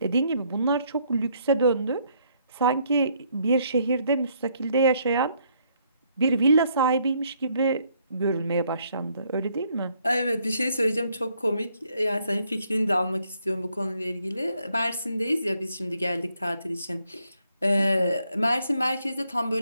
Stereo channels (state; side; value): inverted; both; correlation -0.70